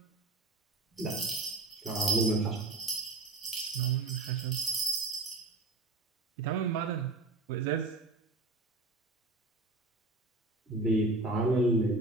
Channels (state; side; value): quieter; left; 3.2 dB